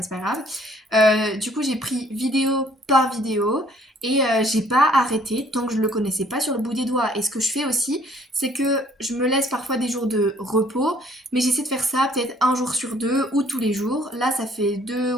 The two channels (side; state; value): both; normal; correlation 0.60